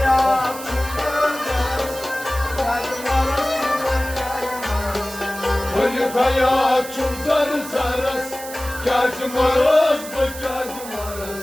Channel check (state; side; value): noise; right; hiss, 12 dB below the sound